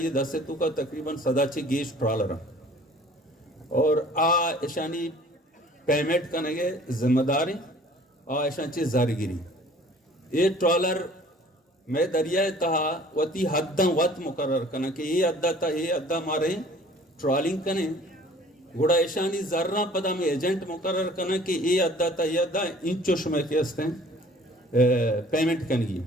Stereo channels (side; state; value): both; normal; correlation 0.51